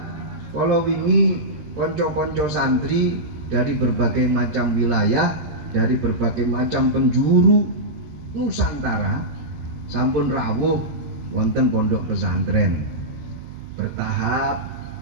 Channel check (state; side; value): late; left; 13 ms